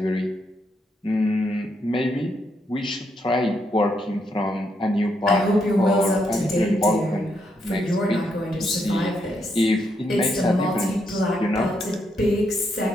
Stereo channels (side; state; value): both; normal; correlation 0.78